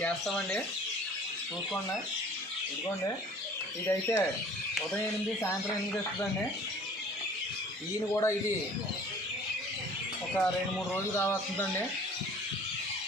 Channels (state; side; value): normal; both; correlation 0.50